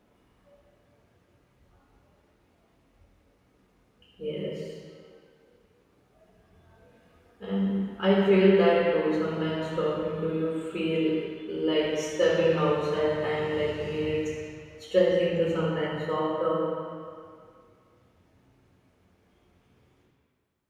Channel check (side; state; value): both; identical; correlation 1.00